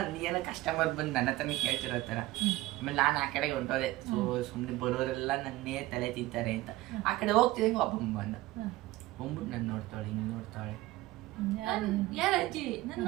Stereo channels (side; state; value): left; quieter; 17.8 dB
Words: ಕಸ್ಟಮರ್ ಬಂದು ನನ್ನ ಹತ್ರನೇ ಕೇಳ್ತಿರೋ ಥರ. ಆಮೇಲೆ ನಾನು ಆ ಕಡೆಗೆ ಹೊಂಟೋದೆ. ಸುಮ್ಮನೆ ಬರೋರೆಲ್ಲ ನನ್ನೇ ತಲೆ ತಿಂತಾರೆ ಅಂತ ಆ ಕಡೆ ಹೋಗ್ತಿದ್ದಂಗೆ ಒಬ್ಬ ಬಂದ. ಬಂದ್ಬಿಟ್ಟು ನಾನು ನೋಡ್ತಾಳೆ, ಹಿಂಗೆ ನೋಡ್ತಾಳೆ. ಯಾರ ಅಜ್ಜಿ ನಾನು